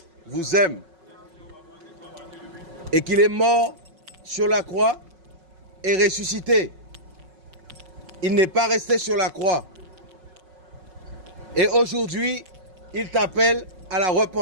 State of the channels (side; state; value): left; late; 5.4 ms